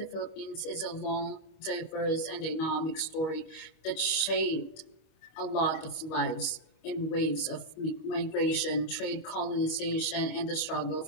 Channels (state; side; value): late; right; 26 ms